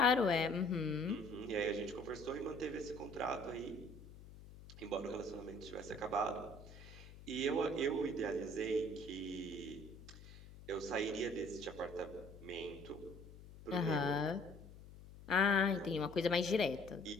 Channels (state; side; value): noise; left; hum, 17 dB below the sound